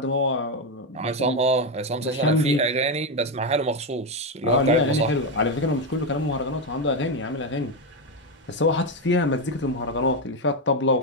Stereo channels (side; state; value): both; normal; correlation 0.08